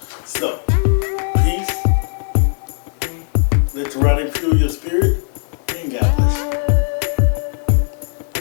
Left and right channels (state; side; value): silent; right; digital silence